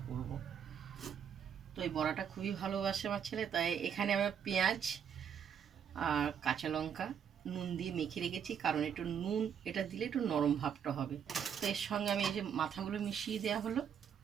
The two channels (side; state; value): left; quieter; 8.1 dB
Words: করব। তো এই বড়াটা খুবই ভালোবাসে আমার ছেলে, তাই এখানে আমি পেঁয়াজ আর কাঁচা লঙ্কা নুন দিয়ে মেখে রেখেছি, কারণ একটু নুন এটা দিলে একটু নরম ভাবটা হবে। তো এর সঙ্গে আমি এই যে মাথাগুলো মিশিয়ে দেওয়া হলো,